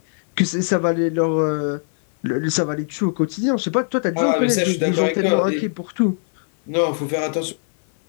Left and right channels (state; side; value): silent; right; 57 dB below the other